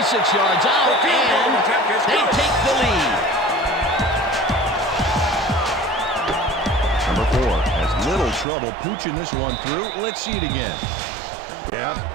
yards out, and they take the lead. Number 4 has little trouble pooching this one through. Let's see it again. Yeah,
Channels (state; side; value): drops out; left; at 8.5 s